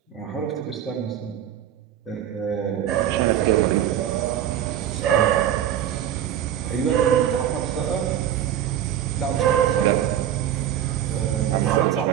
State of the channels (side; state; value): left; quieter; 10.5 dB